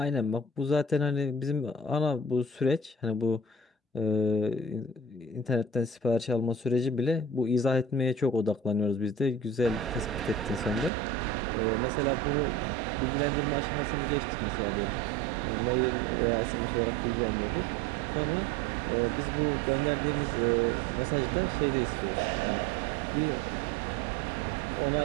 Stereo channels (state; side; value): drops out; left; at 10.9 s